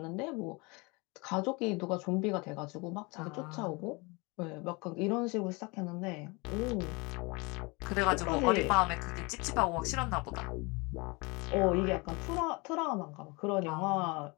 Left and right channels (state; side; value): quieter; right; 27.3 dB